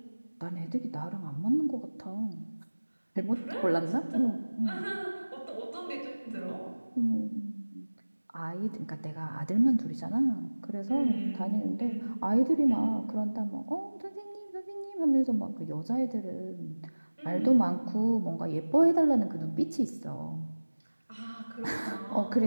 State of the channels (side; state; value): both; inverted; correlation -1.00